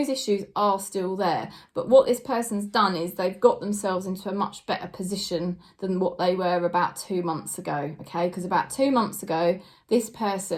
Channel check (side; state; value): both; identical; correlation 1.00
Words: issues are still there. But what this person's done is they've got themselves into a much better position than what they were about 2 months ago, okay? Because about 2 months ago, this